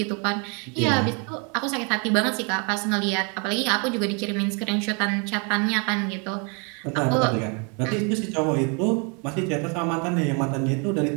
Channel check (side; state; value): left; quieter; 35.4 dB